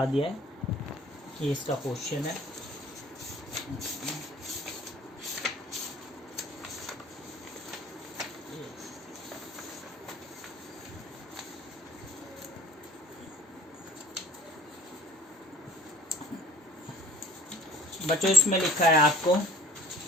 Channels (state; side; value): normal; both; correlation 0.52